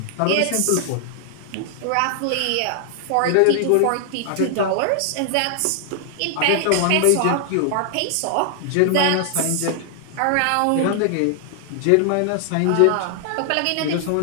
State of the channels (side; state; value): both; different; correlation 0.00